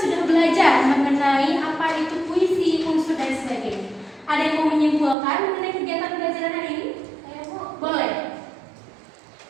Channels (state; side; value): drops out; left; at 5.2 s